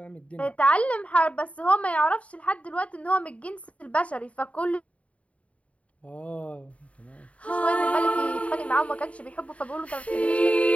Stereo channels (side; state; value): right; late; 0.065 ms